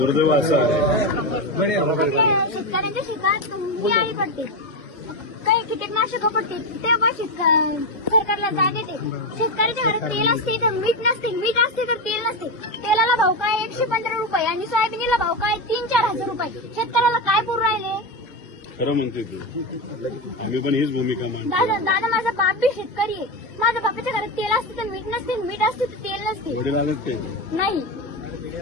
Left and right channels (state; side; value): normal; both; correlation 0.13